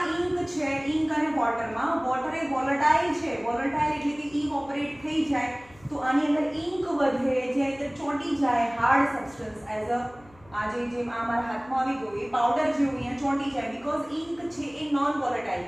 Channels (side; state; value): left; noise; hum, 26 dB below the sound